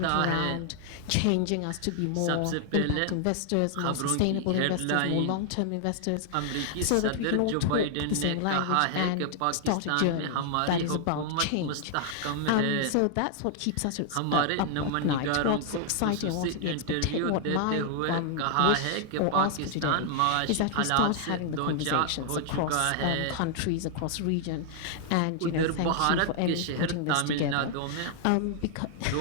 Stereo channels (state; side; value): different; both; correlation 0.00